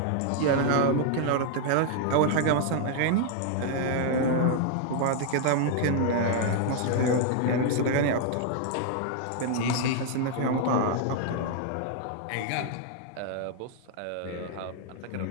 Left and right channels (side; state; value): both; different; correlation 0.00